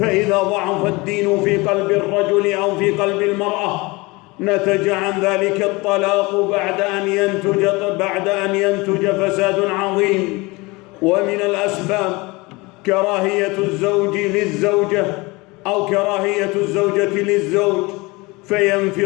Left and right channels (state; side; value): quieter; right; 24.1 dB